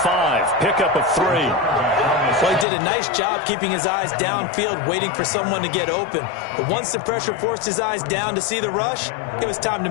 Pickup of 3. Well, he did a nice job keeping his eyes downfield, waiting for someone to get open. But once the pressure forced his eyes down to see the rush, it was time to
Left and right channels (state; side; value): drops out; right; at 2.7 s